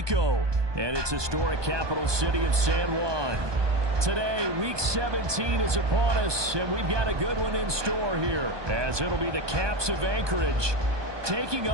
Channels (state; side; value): late; left; 1.2 ms